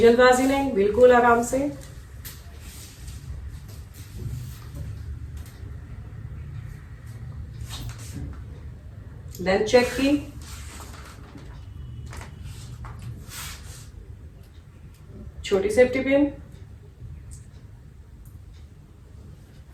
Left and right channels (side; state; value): both; identical; correlation 1.00